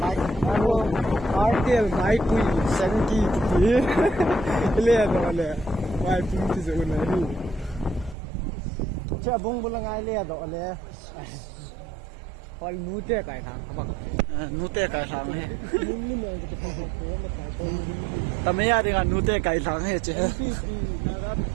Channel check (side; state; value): left; drops out; at 8.2 s